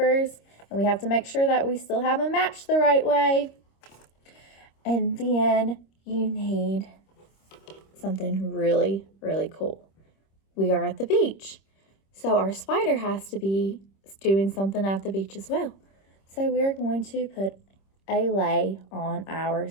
And we have to make sure that we still have them matched the right way. And then you need something really, really cool. We are at the beach. So our spider has to be doing something at the beach as well. So we're going to put a lay on our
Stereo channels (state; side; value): late; right; 26 ms